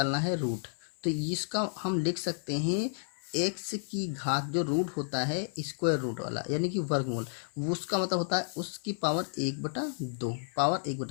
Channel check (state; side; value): silent; right; 57 dB below the other